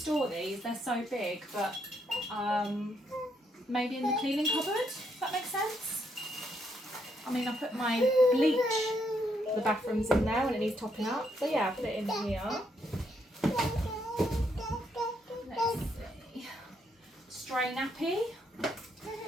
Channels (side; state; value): both; normal; correlation 0.75